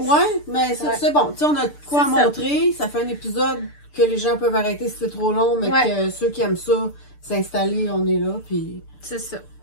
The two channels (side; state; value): right; late; 6.8 ms